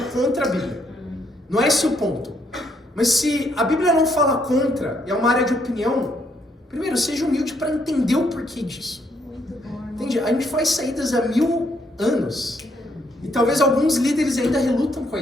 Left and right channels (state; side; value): normal; both; correlation 0.73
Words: contra a Bíblia. Não é esse o ponto. Mas se a Bíblia não fala contra, e é uma área de opinião, primeiro, seja humilde para entender o porquê disso. Entende? A gente faz saídas há 1000 anos. E talvez alguns líderes ainda relutam com a